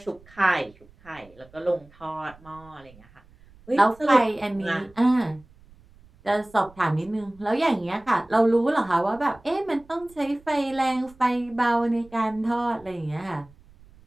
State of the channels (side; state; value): right; noise; rumble, 26 dB below the sound